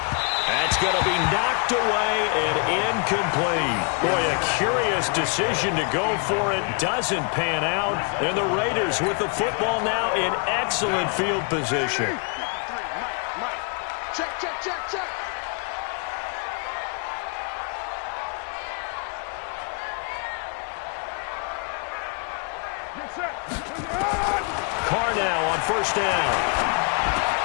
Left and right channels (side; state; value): right; quieter; 37.4 dB